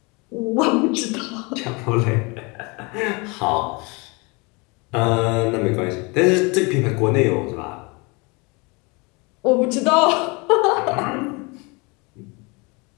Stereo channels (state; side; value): quieter; right; 28.4 dB